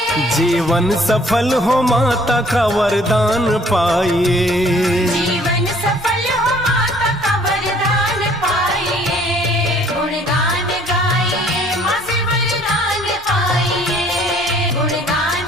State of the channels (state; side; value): normal; both; correlation 0.58